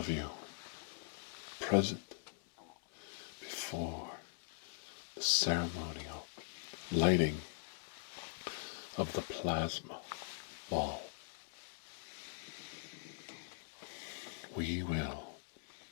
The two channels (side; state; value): right; silent; digital silence